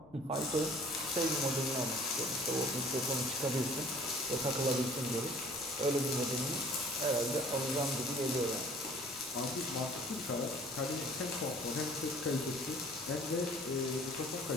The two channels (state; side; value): noise; left; rumble, 27 dB below the sound